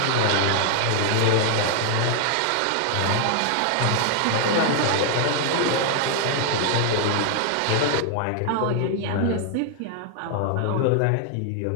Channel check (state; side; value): different; both; correlation 0.00